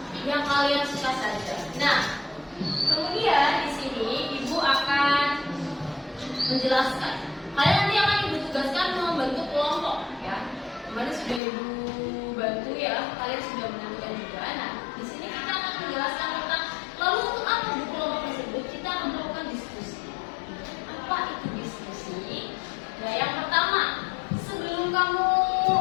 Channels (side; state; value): right; drops out; at 11.4 s